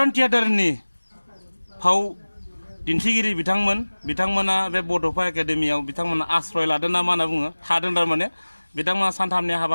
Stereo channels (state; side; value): inverted; both; correlation -1.00